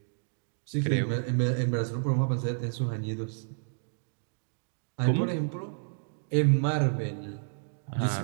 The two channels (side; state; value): left; silent; digital silence